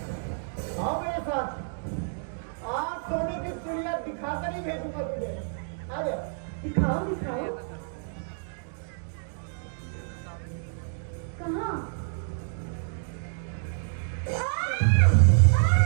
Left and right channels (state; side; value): silent; left; digital silence